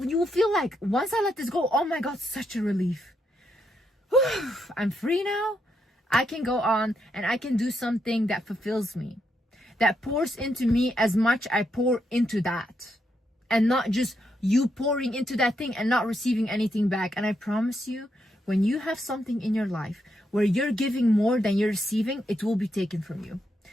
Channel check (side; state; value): both; normal; correlation 0.80